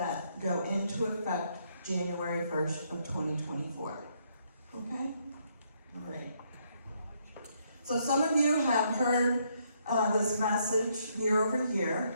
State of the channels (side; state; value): both; inverted; correlation -0.72